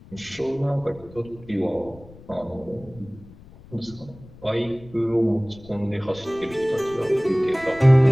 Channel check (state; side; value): noise; left; rumble, 21 dB below the sound